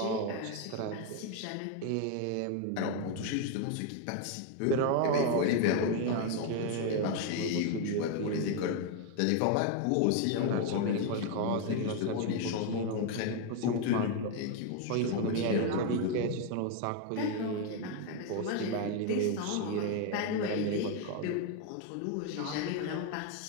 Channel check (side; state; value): both; different; correlation 0.01